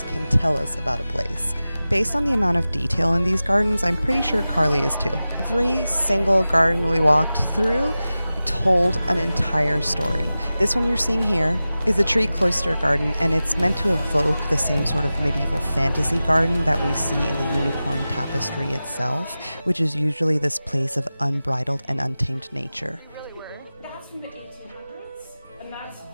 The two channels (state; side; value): inverted; both; correlation -0.95